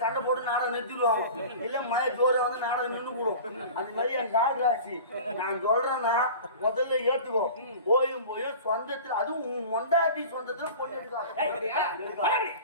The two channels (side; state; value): both; inverted; correlation -0.38